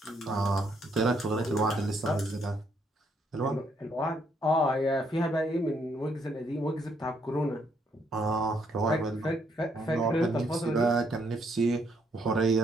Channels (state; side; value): normal; both; correlation 0.71